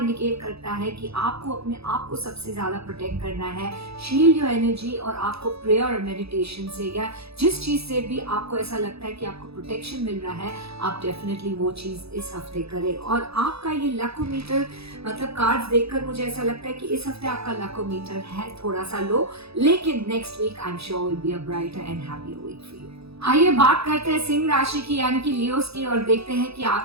करता है कि आपको अपने आप को सबसे ज्यादा प्रोटेक्ट करना है। शील्ड योर एनर्जी, और आपको प्रेयर और मेडिटेशन से या जिस चीज से भी आपको ऐसा लगता है कि आपको प्रोटेक्शन मिल रहा है, आप डेफिनेटली वो चीज इस हफ्ते करें। और आपका ये लकोमीटर मतलब कार्ड्स देखकर मुझे ऐसा लगता है कि इस हफ्ते आपका लकोमीटर है थोड़ा सा लो, लेकिन next week I am sure will be a brighter and happier week for you. आइए बात करते हैं सिंह राशि की यानी कि लियोस की, और देखते हैं कि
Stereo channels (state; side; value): late; left; 0.78 ms